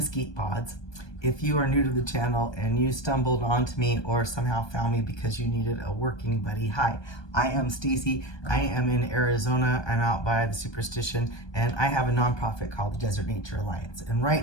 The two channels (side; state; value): right; late; 1.2 ms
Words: pods. If you are new to the channel and you stumbled onto me or somehow found me because you needed a working buddy, hi, I am Stacy. I am in Arizona. I'm out by the Superstition, and I have a nonprofit called the Desert Nature Alliance. And